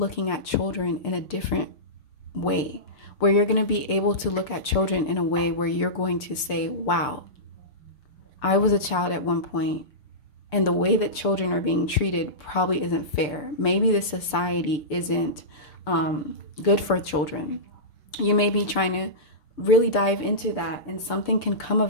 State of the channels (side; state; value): right; late; 6.8 ms